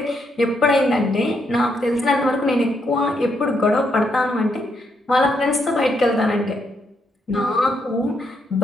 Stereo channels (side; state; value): both; normal; correlation 0.77